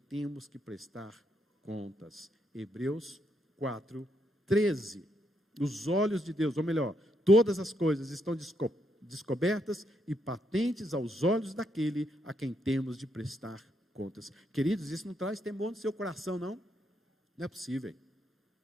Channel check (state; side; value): normal; both; correlation 0.77